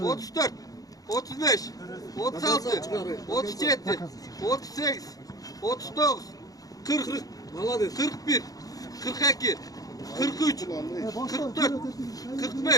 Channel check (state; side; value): late; right; 0.18 ms